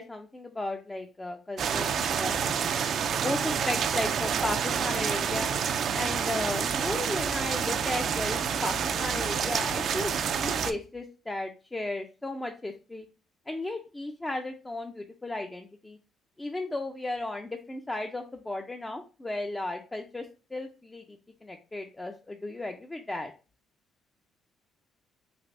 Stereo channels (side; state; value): left; quieter; 3.4 dB